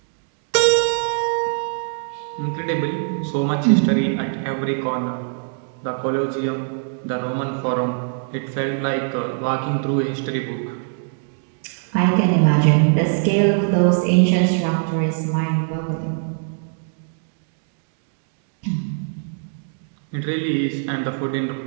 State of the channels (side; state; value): left; silent; digital silence